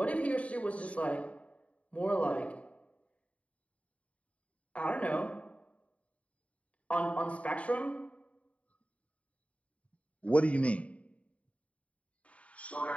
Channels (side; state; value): right; late; 0.065 ms